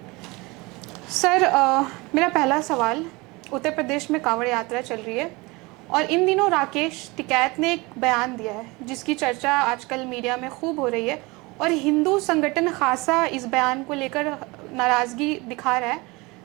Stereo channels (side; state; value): left; quieter; 24.4 dB